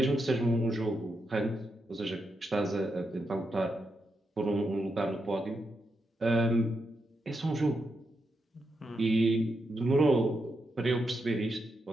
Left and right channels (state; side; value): normal; both; correlation 0.84